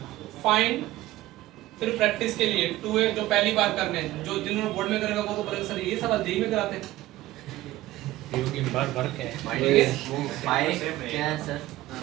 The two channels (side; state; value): left; quieter; 16.4 dB